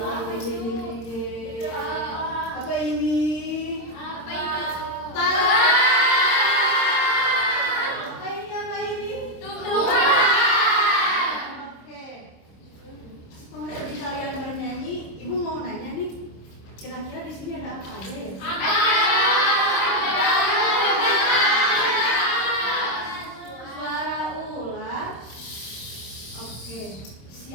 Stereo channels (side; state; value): right; late; 26 ms